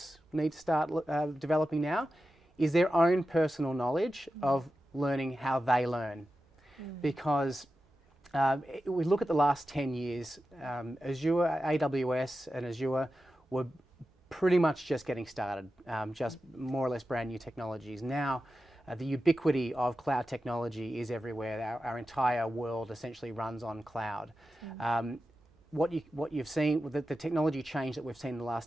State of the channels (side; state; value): both; normal; correlation 0.92